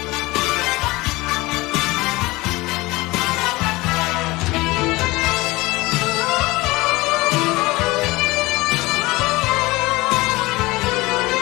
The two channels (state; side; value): quieter; right; 21.4 dB